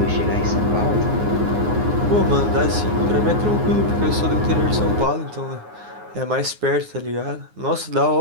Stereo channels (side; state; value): left; late; 9.6 ms